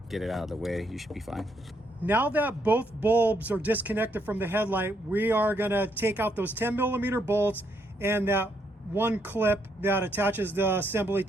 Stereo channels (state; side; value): normal; both; correlation 0.75